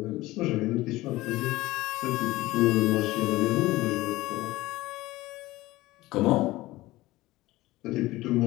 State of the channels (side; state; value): right; quieter; 18.4 dB